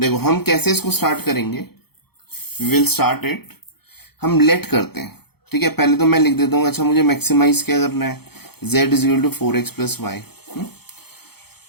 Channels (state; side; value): late; right; 0.96 ms